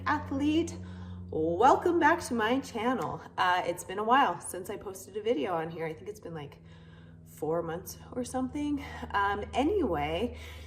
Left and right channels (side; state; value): both; identical; correlation 1.00